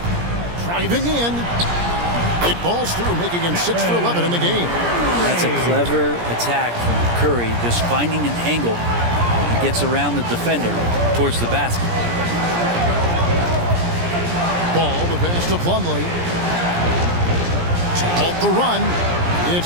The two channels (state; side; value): late; left; 17 ms